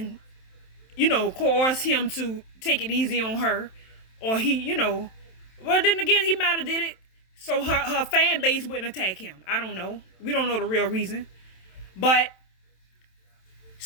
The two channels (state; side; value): late; right; 27 ms